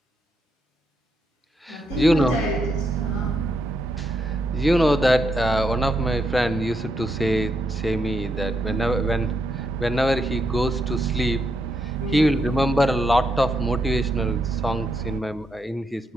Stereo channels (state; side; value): normal; both; correlation 0.80